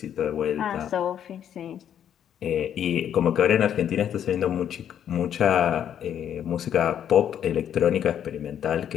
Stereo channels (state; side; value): quieter; right; 9.5 dB